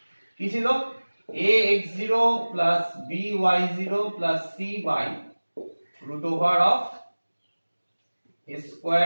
কি ছিল ax0 plus by0 plus c by root over of a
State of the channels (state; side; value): inverted; both; correlation -1.00